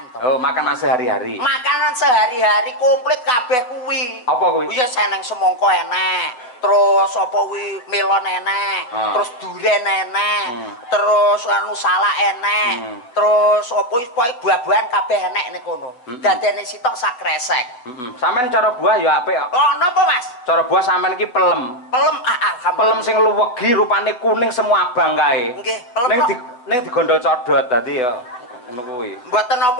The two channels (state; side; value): late; right; 8.1 ms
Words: to. Oh, makanan sehari-hari. Makanan sehari-hari komplit kabeh kuwi. Apa kuwi? Iya seneng semangka enek, terus apa kuwi melon enek, terus duren enek, terus anu salak enek, terus apa kuwi buah-buahan kabeh enek ning kono. Dadene sitok sak kresek. Sampeyan cara buah ya apik kok. Oh, napa Mas? Cara buah sampeyan iki pelem. Pelem alhamdulillah. Pelem sing luwegi rupane kuning semua abang kae. Nggih, pelem. Ning digondol codot dadi ya ngono kuwi. Mboten